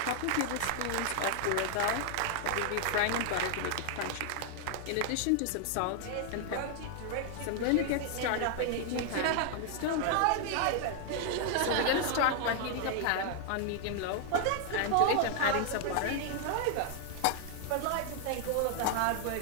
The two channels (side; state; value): both; different; correlation 0.00